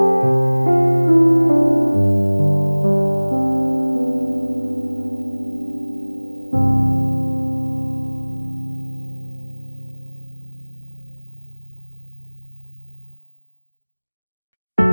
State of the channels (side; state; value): both; inverted; correlation -1.00